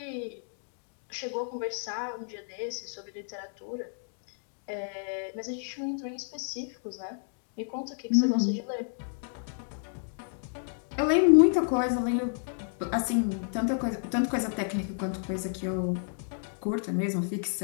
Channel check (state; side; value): silent; right; digital silence